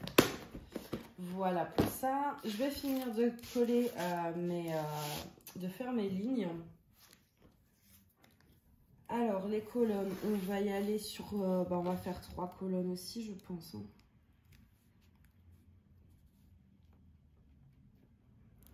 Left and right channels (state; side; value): identical; both; correlation 1.00